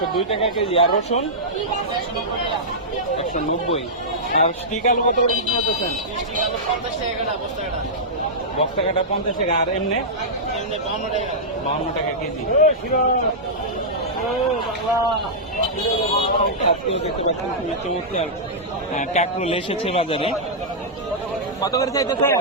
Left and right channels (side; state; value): both; normal; correlation -0.12